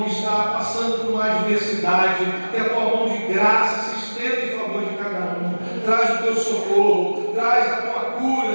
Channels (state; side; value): inverted; both; correlation -1.00